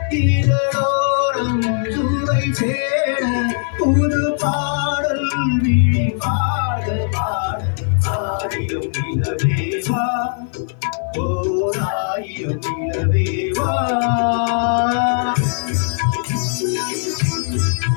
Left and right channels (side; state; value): right; silent; digital silence